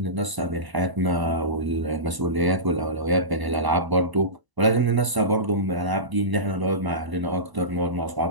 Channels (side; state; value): left; late; 1.0 ms